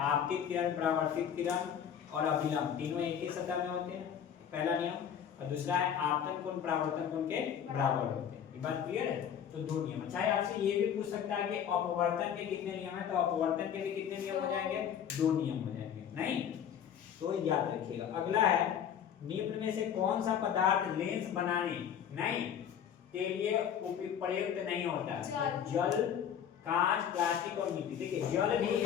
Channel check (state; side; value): quieter; right; 8.7 dB